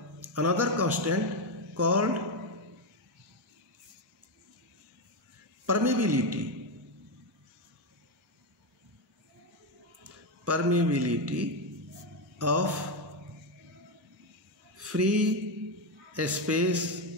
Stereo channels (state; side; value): normal; both; correlation 0.09